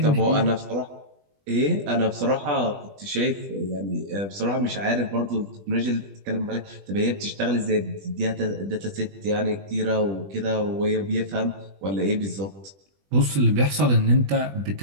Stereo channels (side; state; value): left; late; 20 ms